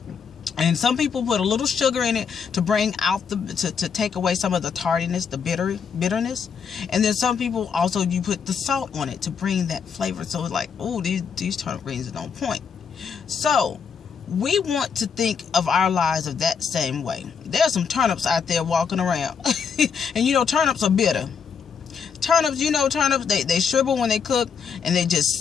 And some people put a little sugar in it to bring out to take away some of the tardiness, the bitterness. And then some people also, you put the salt on it to bring that flavor. So it's like, oh, these turnip greens are on point. So we want to think of our lives of that same way. There's some turnips out there walking around. And you know, turnips are bitter. Turnips, they shrivel when they cook, and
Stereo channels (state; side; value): quieter; right; 6.4 dB